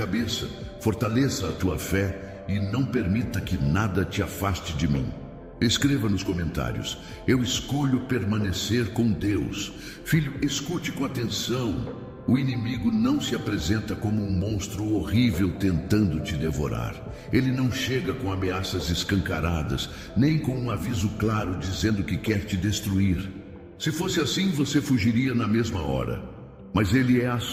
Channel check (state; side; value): identical; both; correlation 1.00